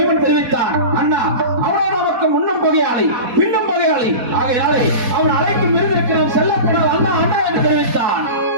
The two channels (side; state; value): left; late; 4.1 ms